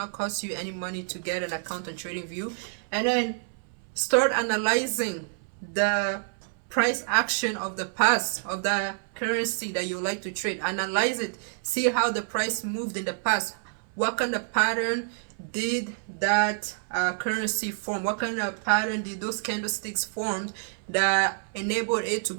cost you any money to get an account on TradingView. And then start analyzing the price action of the past of the currency that you like to trade. Analyze it. See how the price moved in the past. What kind of pattern did that currency form? What kind of pattern did those candlesticks form that enabled it to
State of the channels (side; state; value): left; silent; 60 dB below the other